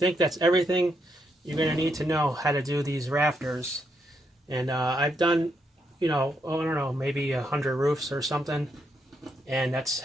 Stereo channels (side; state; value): both; normal; correlation 0.79